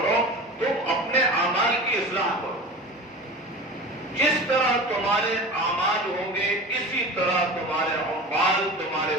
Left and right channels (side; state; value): both; normal; correlation 0.33